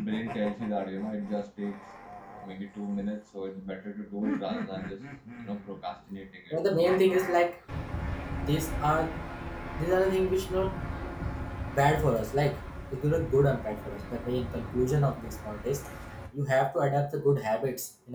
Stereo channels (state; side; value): identical; both; correlation 1.00